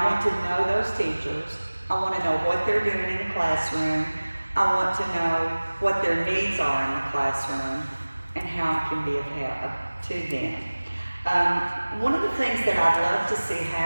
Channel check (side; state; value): both; inverted; correlation -1.00